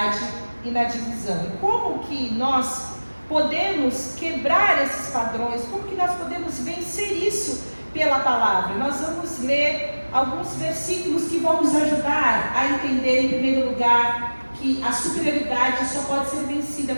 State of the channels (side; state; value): both; inverted; correlation -1.00